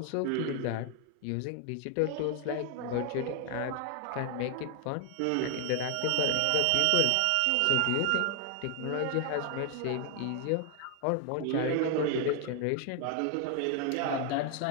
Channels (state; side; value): different; both; correlation 0.00